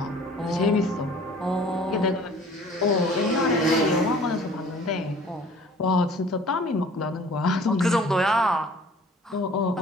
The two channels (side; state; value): both; normal; correlation 0.50